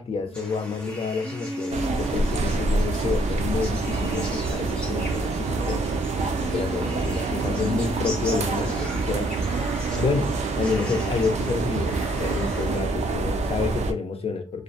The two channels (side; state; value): both; normal; correlation 0.66